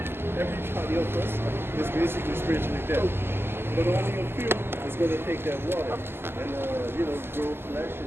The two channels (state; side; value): late; left; 0.11 ms